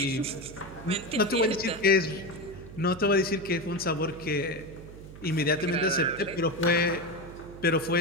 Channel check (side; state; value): right; noise; hum, 15 dB below the sound